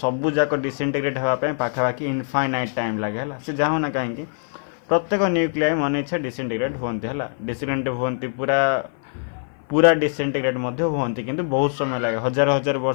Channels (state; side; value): silent; right; 56 dB below the other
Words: जाक डिसइंटीग्रेट होगापी पाखापाखि इनफाइनाइट टाइम लगे से जहाँ ना कहीं प्रत्येक न्यूक्लियाई मन इच्छा डिसइंटीग्रेट होती है डिसइंटीग्रेट होती पूरा पूरा डिसइंटीग्रेट होती किंतु बहुत समय लगे हजार हजार